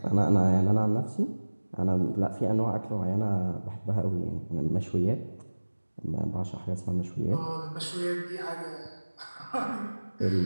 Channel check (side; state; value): both; inverted; correlation -1.00